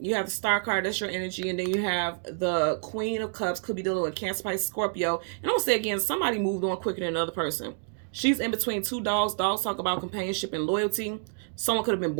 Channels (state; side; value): silent; left; digital silence